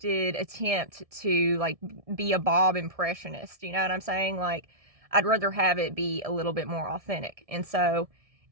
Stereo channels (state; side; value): late; left; 1.7 ms